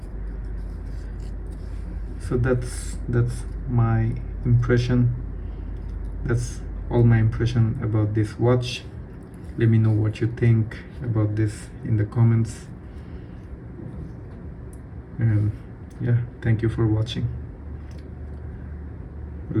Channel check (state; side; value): identical; both; correlation 1.00